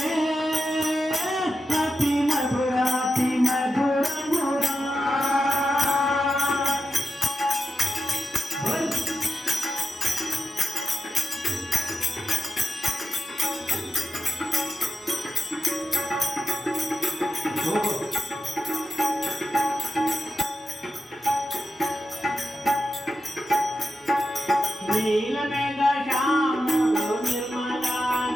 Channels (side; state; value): both; normal; correlation 0.89